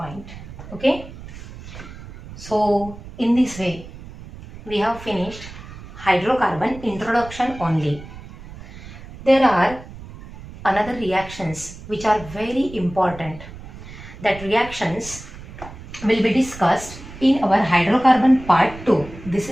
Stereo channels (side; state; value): right; noise; rumble, 15 dB below the sound